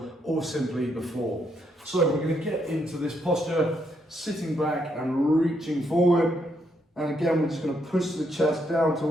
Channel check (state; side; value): normal; both; correlation 0.76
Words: or simply the floor. So we're going to get into this posture, sitting back and reaching forward. And again, we're just going to push the chest down